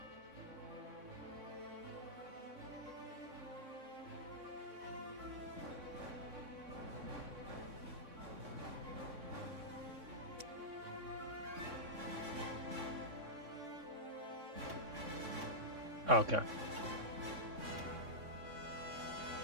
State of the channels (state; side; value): late; left; 3.6 ms